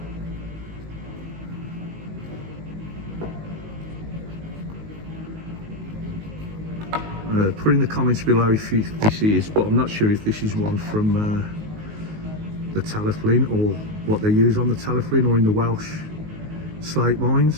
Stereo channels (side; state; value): left; late; 19 ms